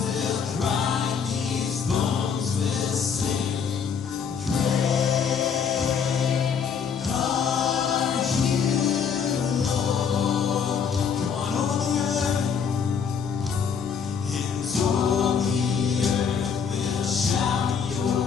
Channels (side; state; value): right; quieter; 6.7 dB